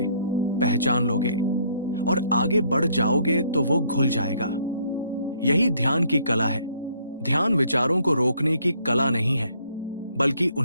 पहचान लोगे और आगे बढ़ जाओगे तो वो घुल जाएगा। यही ध्यान की कला है। ध्यान विचारों को रोकने की कला नहीं है, बल्कि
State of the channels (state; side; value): inverted; both; correlation -0.65